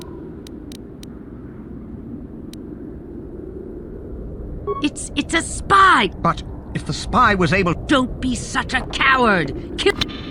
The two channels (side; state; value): both; identical; correlation 1.00